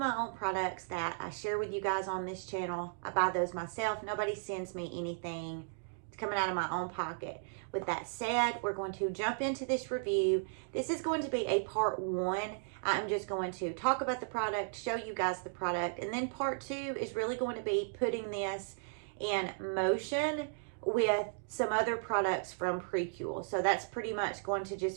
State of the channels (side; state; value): left; silent; digital silence